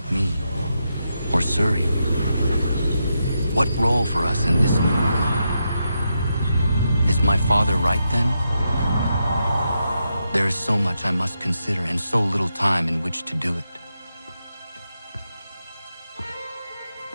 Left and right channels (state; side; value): inverted; both; correlation -0.85